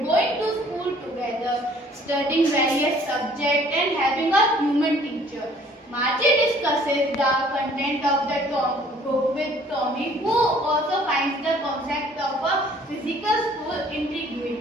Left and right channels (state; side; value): normal; both; correlation 0.57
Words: going to school together, studying various subjects, and having a human teacher. Margie discusses the content of the book with Tommy, who also finds the concept of a physical school